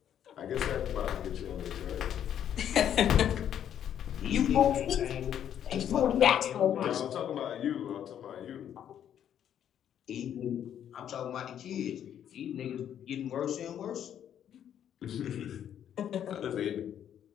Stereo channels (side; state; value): right; quieter; 9.8 dB